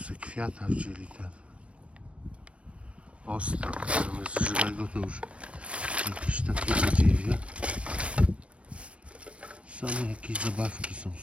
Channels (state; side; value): late; left; 0.062 ms